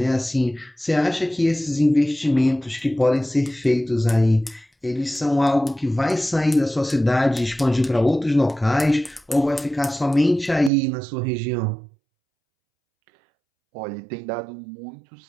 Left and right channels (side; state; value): left; drops out; at 10.7 s